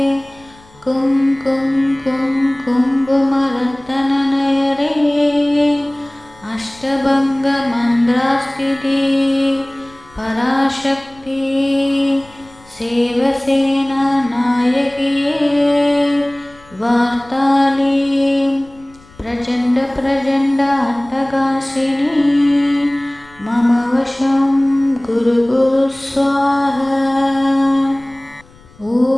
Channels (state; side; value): noise; left; rumble, 26 dB below the sound